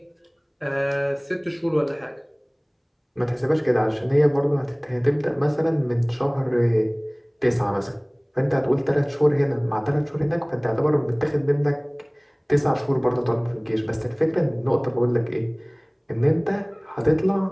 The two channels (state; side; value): identical; both; correlation 1.00